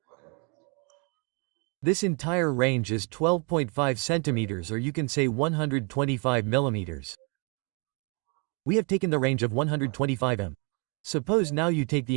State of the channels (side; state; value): left; quieter; 34.5 dB